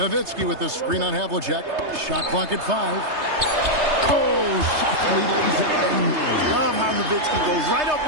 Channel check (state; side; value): late; left; 3.3 ms